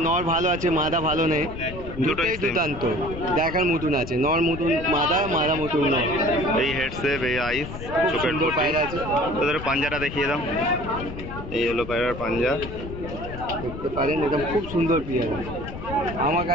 নর ভালো আছে, মাদা ভালো নেই, দুটোই দুর্দান্ত দেখার মতন আছে। নর মতন মাদা, মাদা মতন নর। এই হেডসেপ, এই আইস, চোখের পায়রা আছে। তোদের পাঞ্জাটা দেখিয়ে দাও। এই হলো পায়রার পাঞ্জা, দেখতে পারেন, একদম খুব সুন্দর পেয়ার। আমার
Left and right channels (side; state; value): left; noise; rumble, 10 dB below the sound